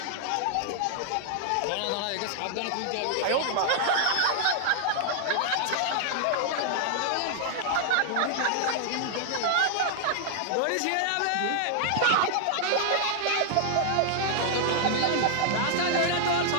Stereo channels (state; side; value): different; both; correlation -0.01